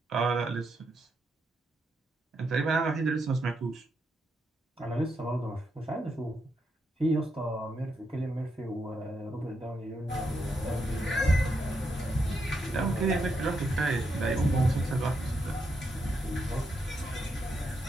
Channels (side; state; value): both; normal; correlation 0.81